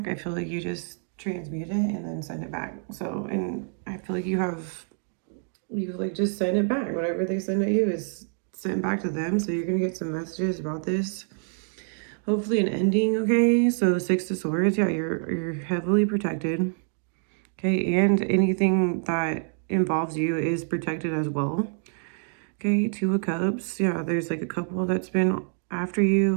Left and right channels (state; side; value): silent; left; 56 dB below the other